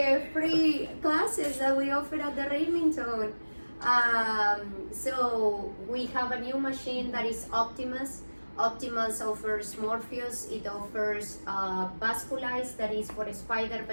Free classes that we offer at the Remington. So we have a new machine that is Optimus. Optimus offers Morpheus. It offers Vasculize, that is for spider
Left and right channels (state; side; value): inverted; both; correlation -1.00